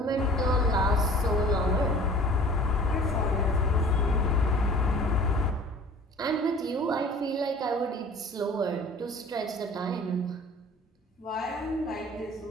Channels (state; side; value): normal; both; correlation 0.47